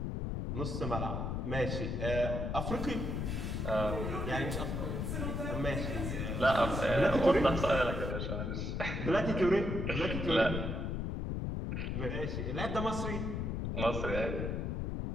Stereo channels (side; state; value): left; noise; rumble, 2 dB below the sound